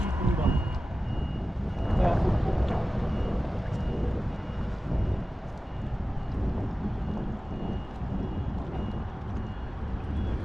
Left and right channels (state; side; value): normal; both; correlation 0.95